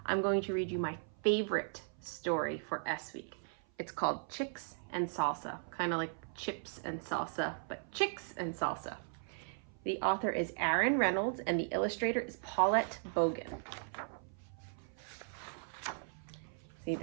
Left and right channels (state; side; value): silent; left; 53 dB below the other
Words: I'm going to read you my favorite story for S Week. It's called Chicks and Salsa, kind of like chips and salsa, but chicks and salsa. The author is Aaron Reynolds and the illustrator is Paulette Bogan. See,